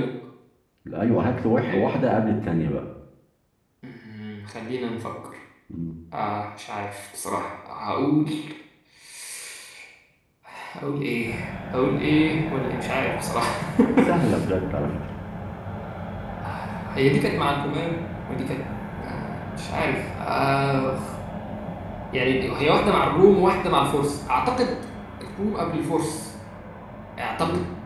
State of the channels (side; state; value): both; identical; correlation 1.00